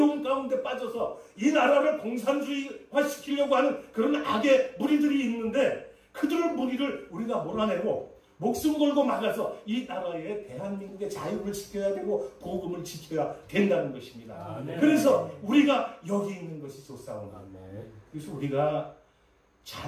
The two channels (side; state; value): both; identical; correlation 1.00